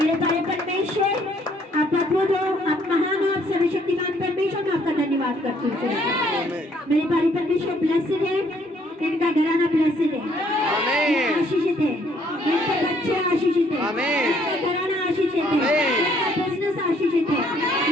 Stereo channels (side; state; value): both; normal; correlation 0.65